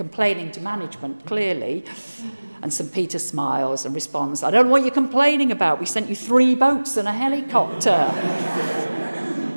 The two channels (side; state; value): both; inverted; correlation -1.00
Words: to management, clearly. And St. Peter smiles and responds, "I don't know what you're complaining about. We sent you 3 boats and a helicopter."